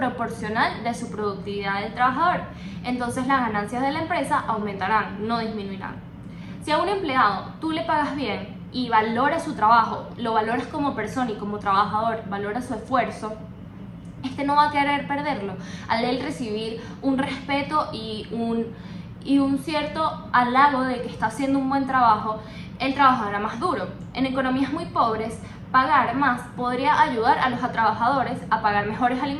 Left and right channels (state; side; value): identical; both; correlation 1.00